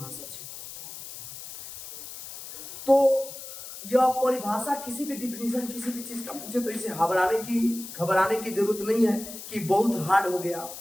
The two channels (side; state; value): left; noise; hiss, 12 dB below the sound